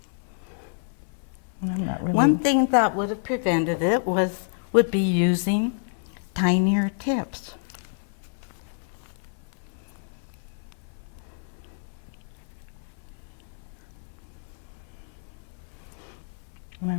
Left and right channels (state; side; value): silent; right; 58 dB below the other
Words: I'm not really. One thing that would have prevented it would be using tinier tips. And